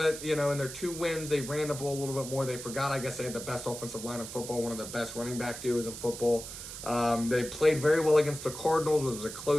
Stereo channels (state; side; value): noise; right; hiss, 10 dB below the sound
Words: in their 2 wins. They ran the ball a little bit more. They forgot, I guess, they had the best offensive line in football, one of the best running back duos in football. They played very well against the Cardinals. It was a